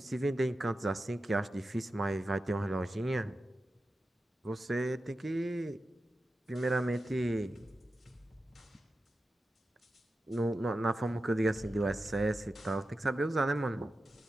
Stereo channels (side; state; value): both; normal; correlation 0.92